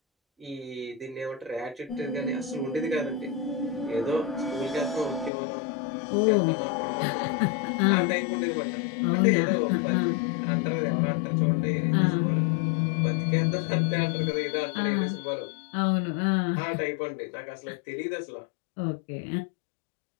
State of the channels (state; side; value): drops out; right; at 5.3 s